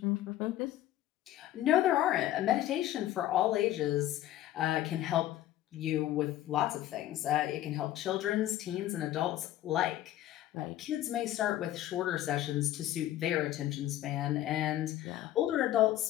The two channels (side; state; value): right; quieter; 13.5 dB